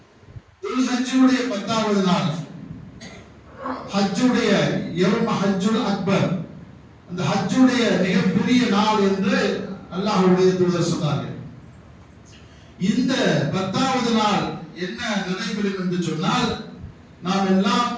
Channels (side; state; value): both; identical; correlation 1.00